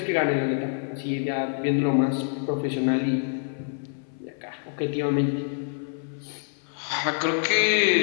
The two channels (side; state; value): right; silent; 61 dB below the other